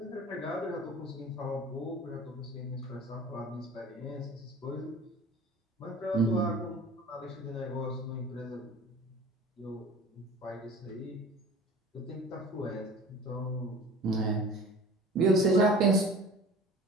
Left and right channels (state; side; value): normal; both; correlation 0.42